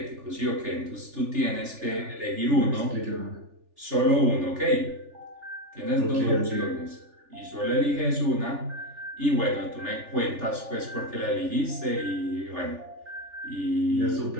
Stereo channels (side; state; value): left; late; 3.4 ms